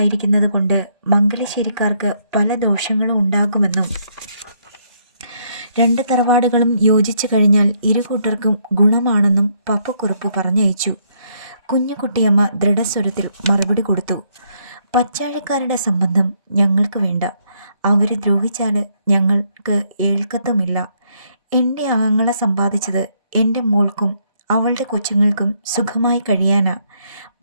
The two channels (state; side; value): inverted; both; correlation -0.72